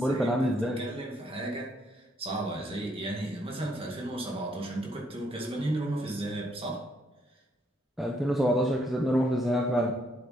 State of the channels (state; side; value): normal; both; correlation 0.72